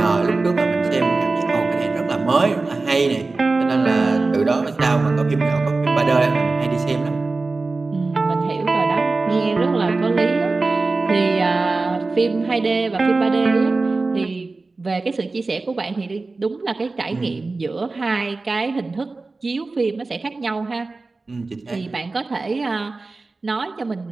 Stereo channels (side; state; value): left; quieter; 3.6 dB